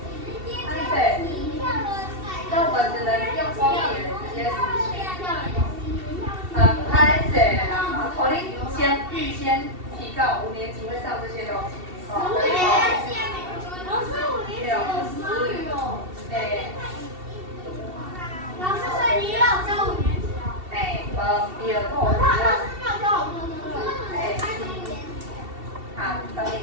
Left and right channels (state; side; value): late; left; 2.7 ms